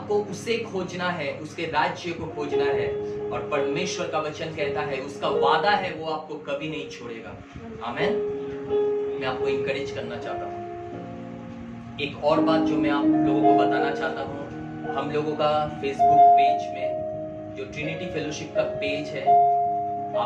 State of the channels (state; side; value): identical; both; correlation 1.00